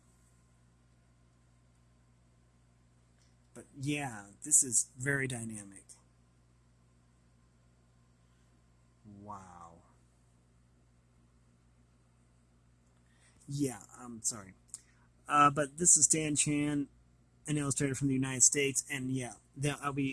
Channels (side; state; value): both; identical; correlation 1.00